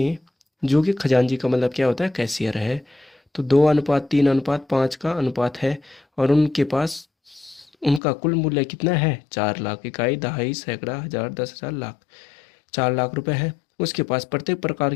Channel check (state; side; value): drops out; right; at 8.0 s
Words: जो कि खजांची का मतलब क्या होता है, कैशियर है, तो 2:3:5 का अनुपात है। और उनके पास उनका कुल मूल्य कितना है, 4 लाख। इकाई, दहाई, सैकड़ा, हजार, 10,000, लाख। 4 लाख रुपए है। उसके पास प्रत्येक प्रकार